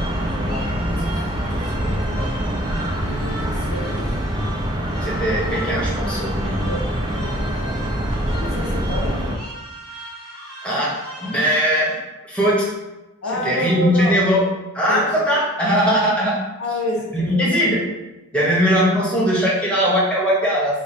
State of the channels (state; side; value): normal; both; correlation 0.44